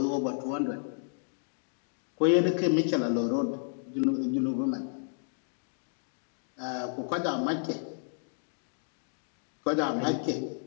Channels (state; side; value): silent; right; digital silence